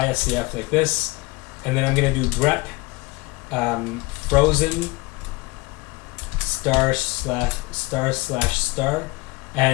like this, and then I'm going to do grep frozen */**,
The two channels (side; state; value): right; quieter; 24.6 dB